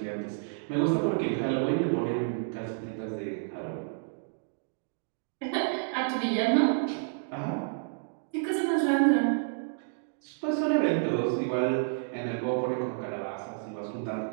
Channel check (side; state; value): left; silent; digital silence